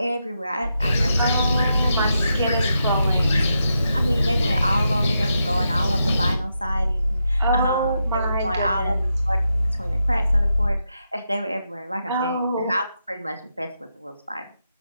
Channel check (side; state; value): both; inverted; correlation -0.85